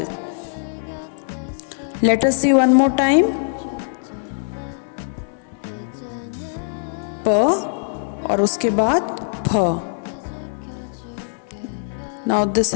Let us see one more time. प और उसके बाद फ. Now this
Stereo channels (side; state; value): right; silent; digital silence